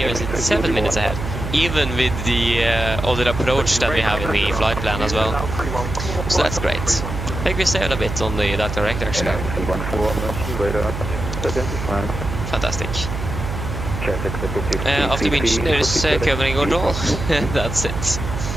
it's 7 minutes ahead. Even with the other approach that we have in the flight plan as well. So that's great. I think we saved a bit on that direct actually. Fantastic. After winch, there's covering control. That's it.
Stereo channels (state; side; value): noise; right; hum, 5 dB below the sound